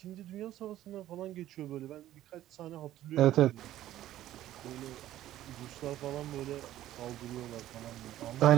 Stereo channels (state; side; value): quieter; left; 13.5 dB